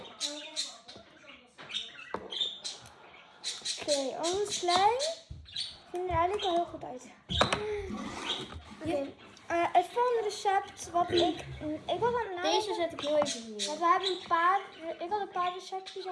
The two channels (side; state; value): both; identical; correlation 1.00